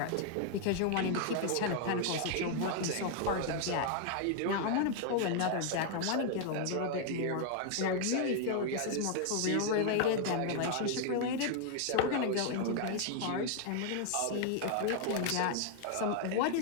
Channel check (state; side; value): different; both; correlation 0.00